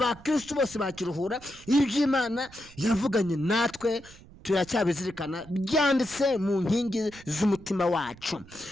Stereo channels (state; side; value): noise; right; rumble, 21 dB below the sound